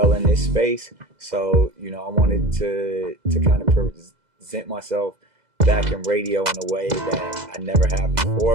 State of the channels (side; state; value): left; late; 2.0 ms